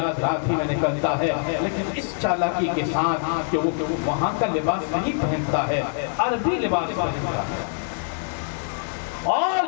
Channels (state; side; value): silent; right; digital silence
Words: رات ہی میں نکلتا ہے، لیکن اس چالاکی کے ساتھ کہ وہ وہاں کا لباس نہیں پہنتا ہے، عربی لباس پہنتا ہے، اور